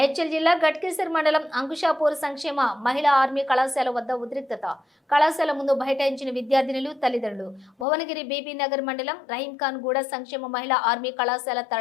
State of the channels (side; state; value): right; drops out; at 7.9 s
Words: జిల్లా గట్కేసర్ మండలం అంకుషాపూర్ సంక్షేమ మహిళా ఆర్మీ కళాశాల వద్ద ఉద్రిక్తత. కళాశాల ముందు బైఠాయించిన విద్యార్థినులు, తల్లిదండ్రులు. భువనగిరి బీబీ నగర్ మండలం రహీంఖాన్ గూడ సంక్షేమ మహిళా ఆర్మీ కళాశాల